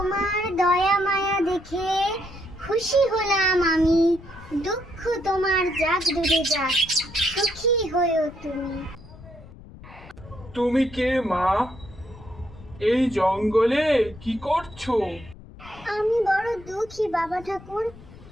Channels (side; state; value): left; noise; rumble, 19 dB below the sound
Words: দয়া মায়া দেখে খুশি হলাম আমি। দুঃখ তোমার যাক ডুবে যাক, সুখী হয়েও তুমি। তুমি কে মা? এই জঙ্গলে কি করছো? আমি বড় দুঃখী বাবা ঠাকুর।